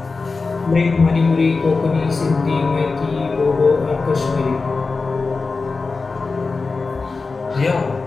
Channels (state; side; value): quieter; right; 4.1 dB